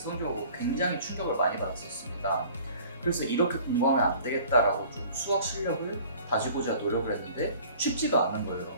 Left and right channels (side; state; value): both; inverted; correlation -0.49